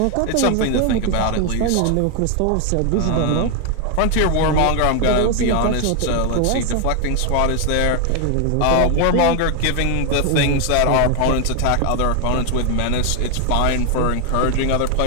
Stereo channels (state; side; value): different; both; correlation 0.01